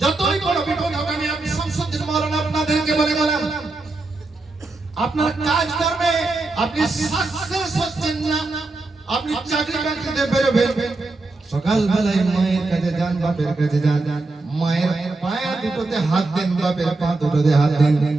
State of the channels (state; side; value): quieter; left; 3.3 dB